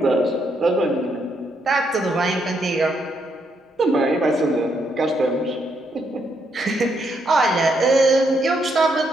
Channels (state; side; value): normal; both; correlation 0.76